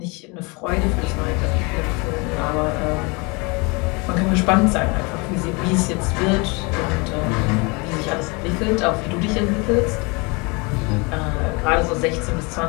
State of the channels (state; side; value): quieter; right; 28.8 dB